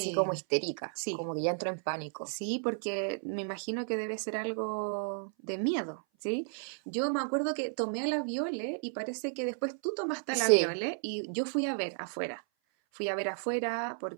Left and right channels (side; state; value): left; silent; 56 dB below the other